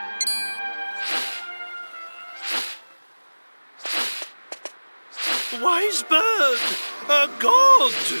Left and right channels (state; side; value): inverted; both; correlation -1.00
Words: Wise bird, a god.